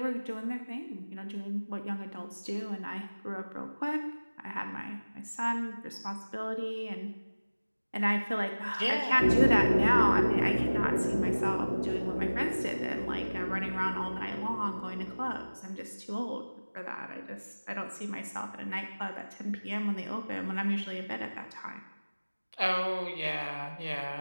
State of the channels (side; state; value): both; inverted; correlation -1.00